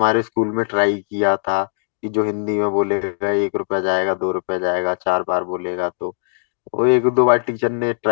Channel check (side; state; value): right; silent; digital silence